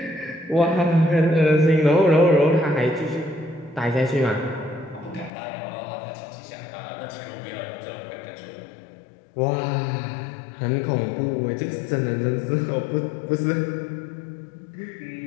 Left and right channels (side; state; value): right; drops out; at 5.3 s